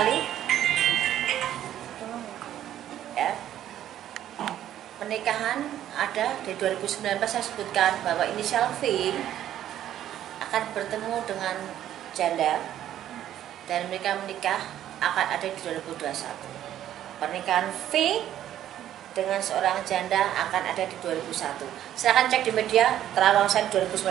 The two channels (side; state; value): left; quieter; 11.6 dB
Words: ya. Pernikahan ada di 2019, saya sebutkan bahwa inisial V akan bertemu dengan janda, dan mereka menikah akan ada di 2021. Pernikahan V dengan seorang janda akan ada di 2001. Silahkan cek di media terawang saya 2019